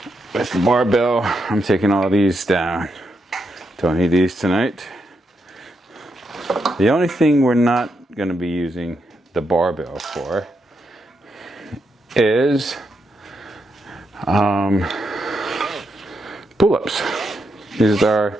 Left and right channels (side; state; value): both; normal; correlation 0.82